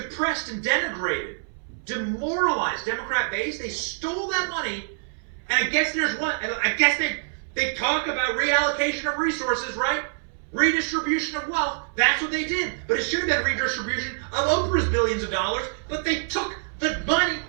and denigrated, demoralized Democrat base. They stole that money, and I guess there's one. I guess they talk about reallocation of resources, right? Redistribution of wealth. That's what they did. But it should have been redistribution of Oprah's billions of dollars. But they took the money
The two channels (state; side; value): silent; left; 61 dB below the other